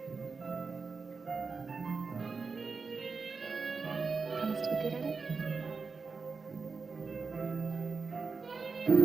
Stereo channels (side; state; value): left; quieter; 4.7 dB